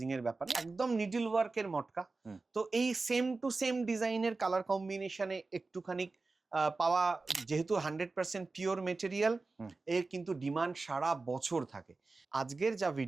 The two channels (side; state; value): left; quieter; 3.7 dB